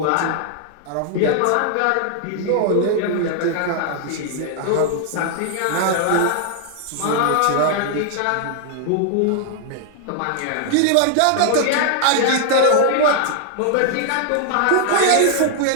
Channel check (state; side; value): different; both; correlation 0.00